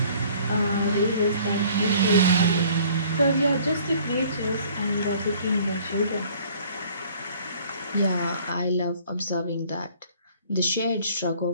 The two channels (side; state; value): both; inverted; correlation -0.54